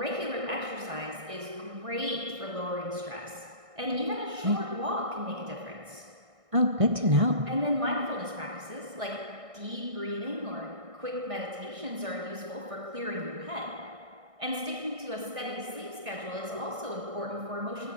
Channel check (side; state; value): left; late; 1.6 ms